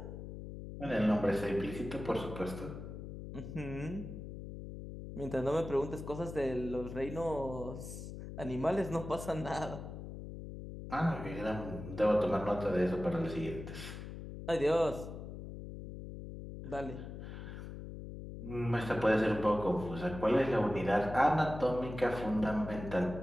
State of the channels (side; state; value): left; noise; hum, 9 dB below the sound